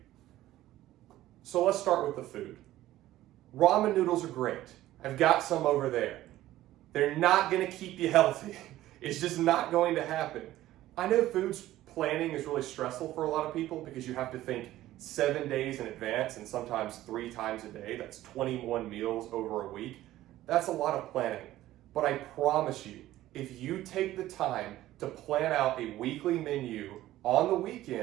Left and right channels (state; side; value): quieter; left; 14.9 dB